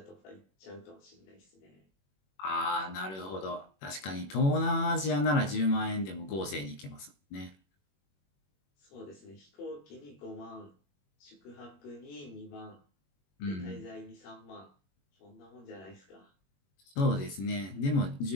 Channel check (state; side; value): late; right; 21 ms